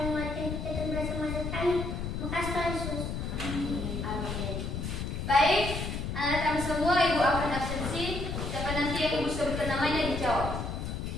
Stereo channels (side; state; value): left; noise; rumble, 4 dB below the sound